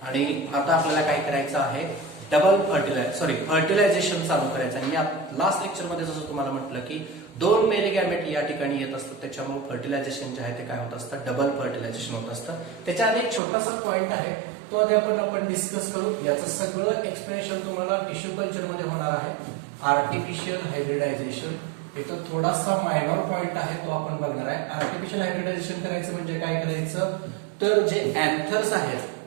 आणि आता आपल्याला काय करायचं आहे, फर्टिलायझेशन चालू करायचं. आणि मी लास्ट लेक्चर मध्ये जसं तुम्हाला म्हटलं की 2 मेरी गॅमेट या ठिकाणी येत असतात, त्याच्यामुळे फर्टिलायझेशन जे आहे ते काय होत असतं, डबल फर्टिलायझेशन होत असतं. त्याच्या आधी एक छोटासा पॉइंट आहे, तो आधी आपण डिस्कस करू. याचं सगळं एक्सप्लेनेशन तुम्हाला टिश्यू कल्चर मध्ये होणार आहे. आर्टिफिशियल हायब्रिडायझेशन इथं थोडासा मायनर पॉइंट आहे, तो आपण बघणार आहे. आर्टिफिशियल हायब्रिडायझेशन करायचं म्हणजे काय करायचं, तर जे अँथर्स आहेत,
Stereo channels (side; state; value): left; drops out; at 13.4 s